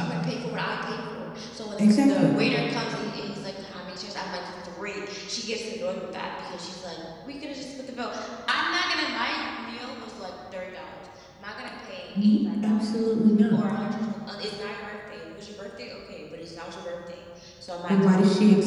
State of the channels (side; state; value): both; identical; correlation 1.00